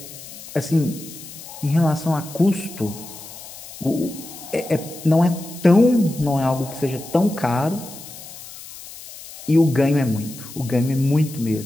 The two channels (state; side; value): noise; left; hiss, 15 dB below the sound